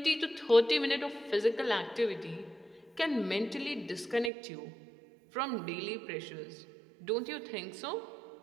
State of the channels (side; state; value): left; drops out; at 4.3 s